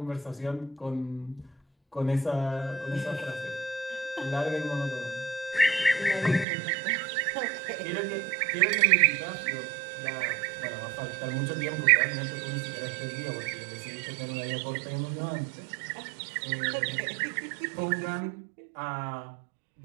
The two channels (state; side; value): drops out; left; at 6.5 s